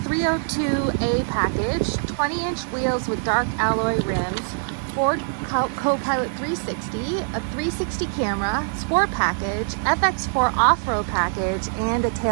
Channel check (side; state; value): left; silent; digital silence